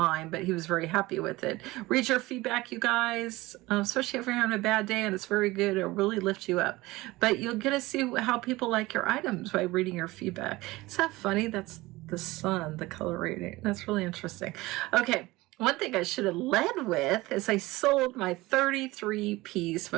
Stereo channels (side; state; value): left; quieter; 20.0 dB